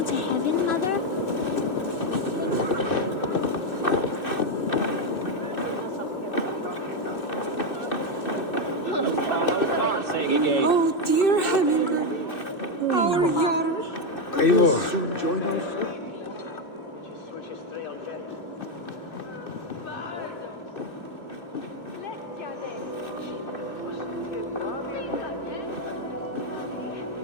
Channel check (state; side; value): late; right; 2.6 ms